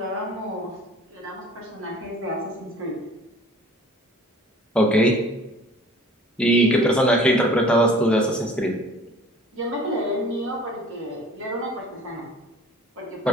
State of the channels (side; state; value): both; normal; correlation 0.48